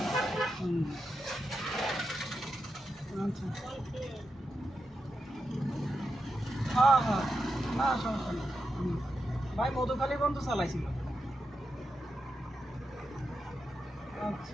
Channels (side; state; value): both; normal; correlation 0.87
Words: আচ্ছা, হ্যাঁ হ্যাঁ, না সমস্যা নেই। ভাই মধুখালী পর্যন্ত চালাইছিল।